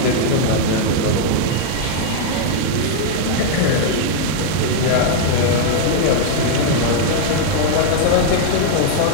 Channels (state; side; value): different; both; correlation -0.01